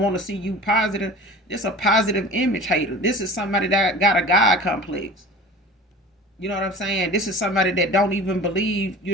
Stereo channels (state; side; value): normal; both; correlation 0.39